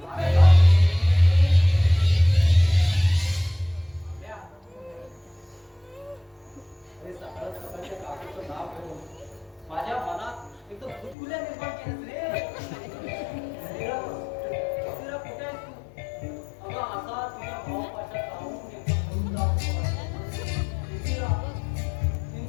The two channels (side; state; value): right; drops out; at 11.2 s